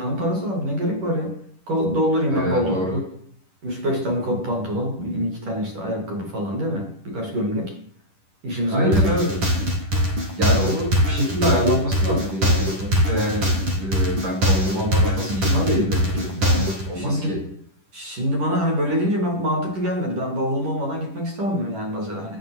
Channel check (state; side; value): late; left; 10 ms